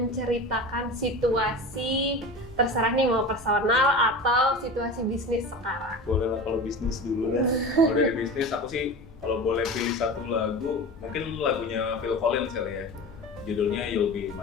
situasi, terserah nih mau personal atau situasi bisnis sekarang? Boleh lah kalau bisnis dulu dah. Kalau dari bisnis aku sih kalau boleh pilih satu lagu, mungkin lagunya Phil Collins kali ya. Judulnya You'll Be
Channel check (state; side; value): normal; both; correlation 0.31